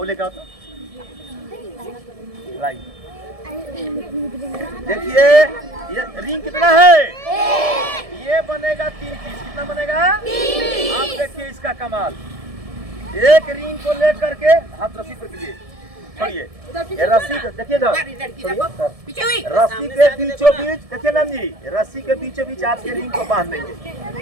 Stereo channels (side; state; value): left; late; 1.7 ms